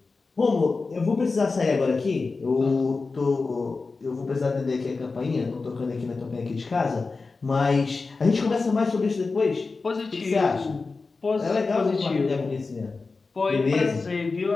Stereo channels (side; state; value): right; quieter; 4.1 dB